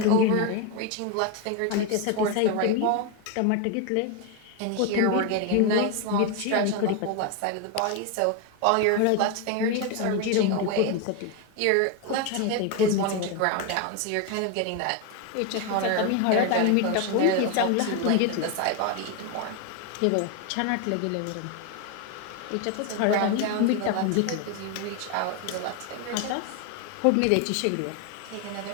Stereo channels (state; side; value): different; both; correlation 0.02